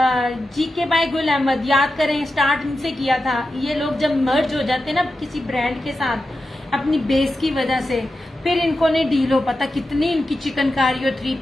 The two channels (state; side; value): normal; both; correlation 0.90